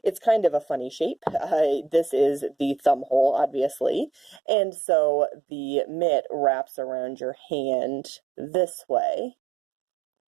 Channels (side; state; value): left; drops out; at 4.4 s